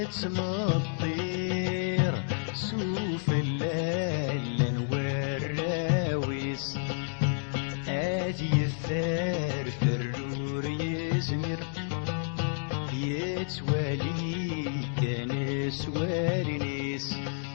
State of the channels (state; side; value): silent; right; digital silence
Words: الطير سوف الليل والراويس هادي الثار فرور يزمر يتوالي كان سوارنيس